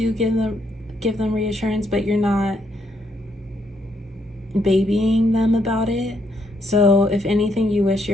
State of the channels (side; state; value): both; normal; correlation 0.75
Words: give them reassurance, but you're not babying them about it. So if anything, you wish